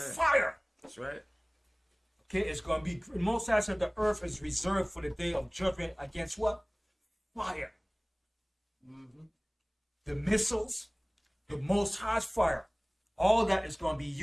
That's right. Okay, it's going to be, the Most High said the earth is reserved for the day of judgment against what? Fire. The missiles, the Most High's fire, all that is going to be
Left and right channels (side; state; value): both; identical; correlation 1.00